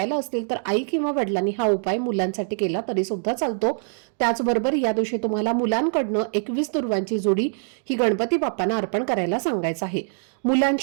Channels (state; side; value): silent; left; digital silence